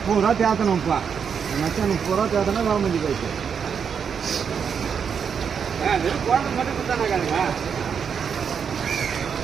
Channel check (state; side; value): quieter; left; 6.9 dB